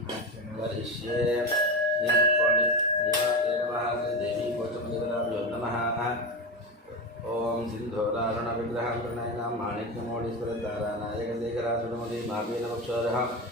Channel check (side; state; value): both; normal; correlation 0.19